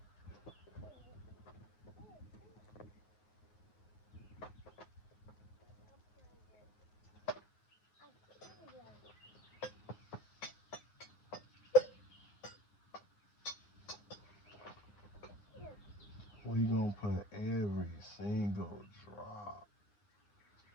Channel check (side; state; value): right; late; 9.3 ms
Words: We gonna put every single drop.